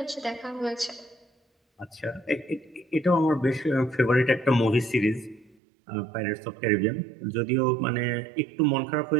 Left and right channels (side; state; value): left; drops out; at 5.6 s